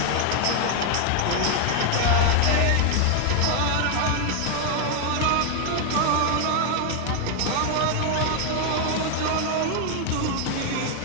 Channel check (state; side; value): different; both; correlation 0.00